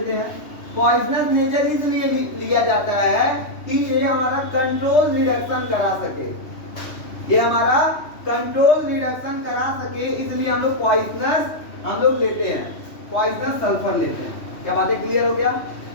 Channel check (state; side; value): late; right; 3.1 ms